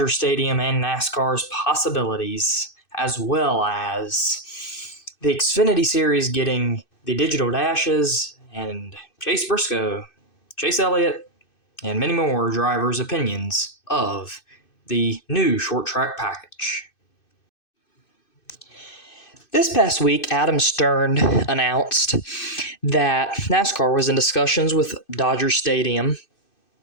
Stadium and NASCAR's possibilities, as well as the Xfinity Series getting the digital dashes, and Chase Briscoe, Chase Elliott, and many more drivers' opinions of the new short track package. This past week, Adam Stern announced that NASCAR was in discussions with Dodger Stadium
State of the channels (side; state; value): right; late; 2.6 ms